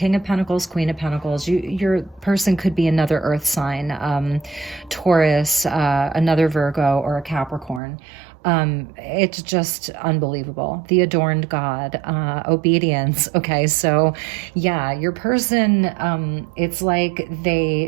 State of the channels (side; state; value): left; drops out; at 7.8 s